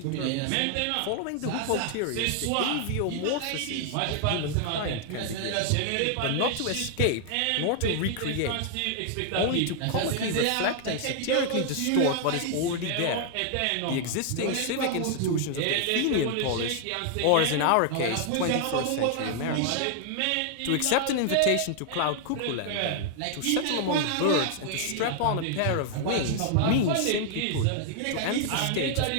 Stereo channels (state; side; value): different; both; correlation 0.00